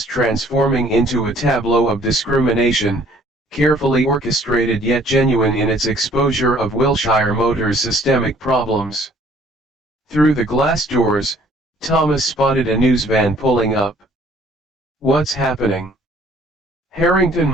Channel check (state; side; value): normal; both; correlation 0.57